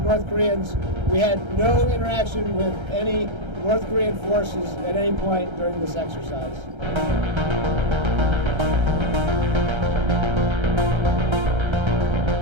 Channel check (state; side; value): late; left; 1.3 ms